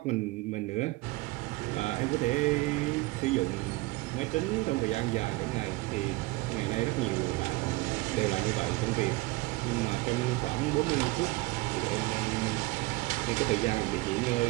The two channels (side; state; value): left; quieter; 21.5 dB